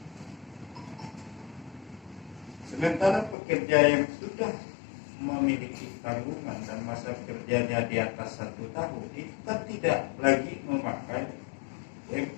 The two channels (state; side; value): drops out; right; at 3.4 s